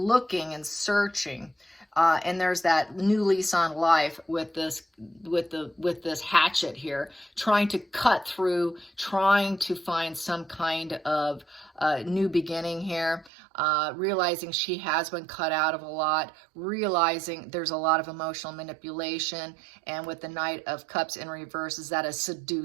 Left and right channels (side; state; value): left; drops out; at 13.3 s